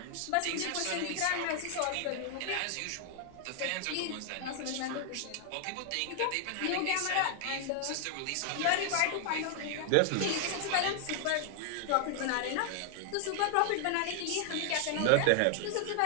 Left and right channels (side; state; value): both; different; correlation 0.00